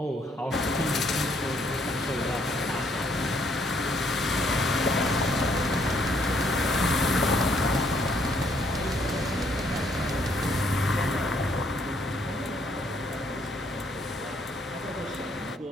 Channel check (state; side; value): normal; both; correlation 0.68